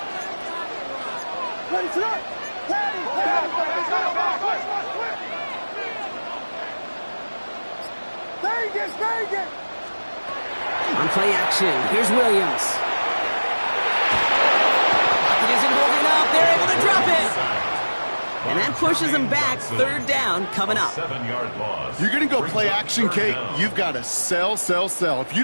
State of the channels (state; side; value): inverted; both; correlation -1.00